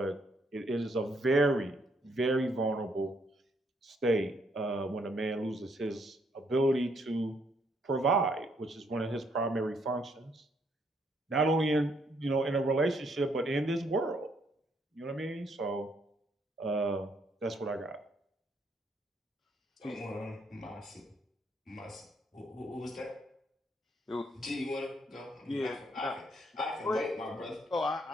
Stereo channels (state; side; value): normal; both; correlation 0.71